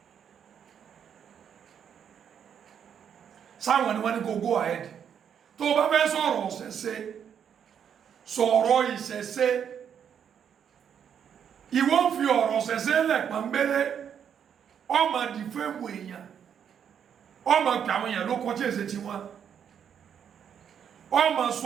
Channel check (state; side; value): quieter; left; 8.2 dB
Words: sáwọn ni wọ́n ní kó go ahead tó bá fẹ́ sọ̀rọ̀ ọ̀sẹ̀ṣe sọ̀rọ̀ ìṣẹ̀ṣe ìwọ ń fi ọ̀rọ̀ ọ̀sẹ̀ṣe lẹ̀ pọ̀nbélé ọmọ dìfẹ́mù èèyàn ọmọ pè àwọn èèyàn ló kọjá èsè tí wọ́n ọmọ